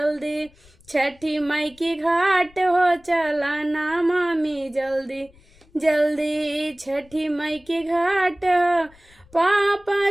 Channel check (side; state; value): left; noise; rumble, 28 dB below the sound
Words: छठी माई की घाट हो चला ना मामी जल्दी जल्दी, छठी माई की घाट हो। पापा